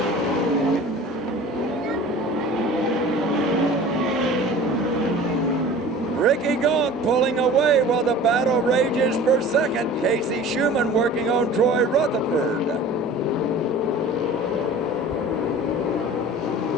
Ricky Gaunt pulling away while the battle rages for second. Casey Schumann working on Troy Rutherford.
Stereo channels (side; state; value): both; normal; correlation 0.42